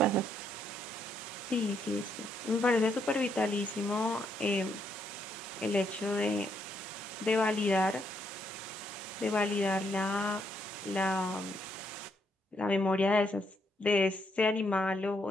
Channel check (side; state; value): both; normal; correlation 0.75